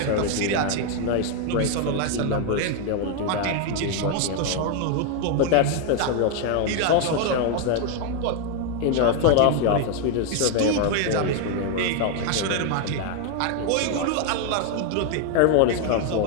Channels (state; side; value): different; both; correlation 0.01